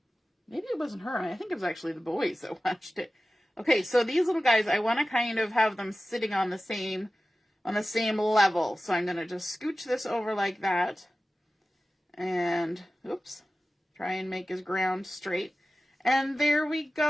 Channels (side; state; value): both; normal; correlation 0.95